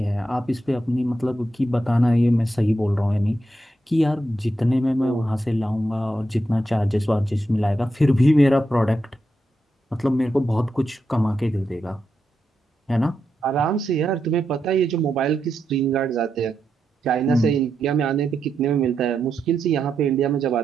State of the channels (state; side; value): normal; both; correlation 0.85